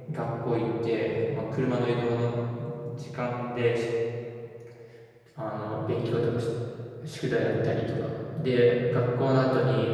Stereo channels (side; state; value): both; identical; correlation 1.00